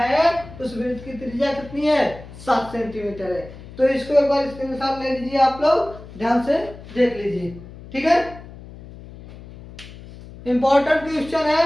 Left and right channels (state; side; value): noise; left; hum, 16 dB below the sound